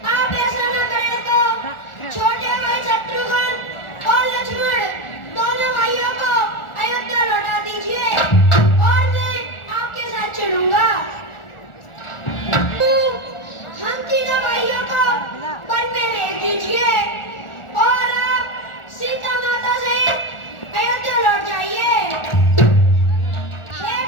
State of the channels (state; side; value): late; right; 1.4 ms